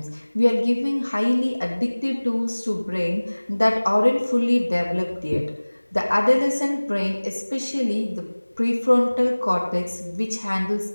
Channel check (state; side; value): inverted; both; correlation -1.00